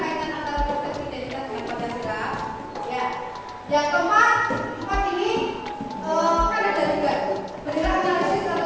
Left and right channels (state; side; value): identical; both; correlation 1.00